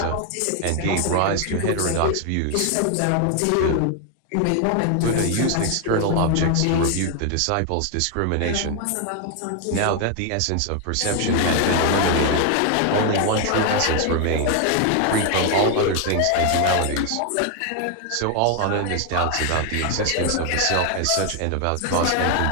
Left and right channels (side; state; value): both; different; correlation 0.01